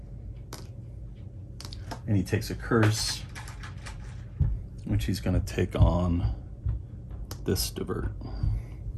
And he takes a curse, which he's going to take on this Divert.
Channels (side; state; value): both; identical; correlation 1.00